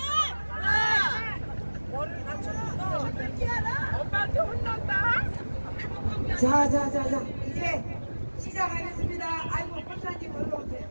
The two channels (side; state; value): both; inverted; correlation -1.00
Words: 엄마한테 혼난다. 자, 이제 시작하겠습니다. 아이고, 권사님 올라오세요.